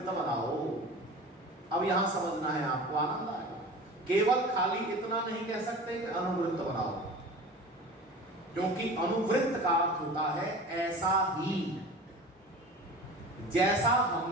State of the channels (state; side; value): normal; both; correlation 0.36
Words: बनाओ। अब यहां समझना है आपको, आनंद आएगा। केवल खाली इतना नहीं कह सकते कि अनुवृत्त बनाओ, क्योंकि अनुवृत्त का अर्थ होता है ऐसा ही जैसा